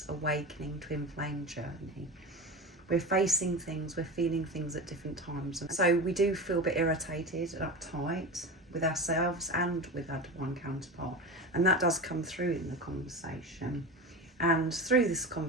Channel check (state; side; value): normal; both; correlation 0.27